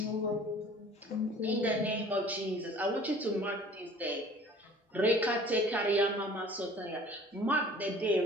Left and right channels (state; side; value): normal; both; correlation 0.49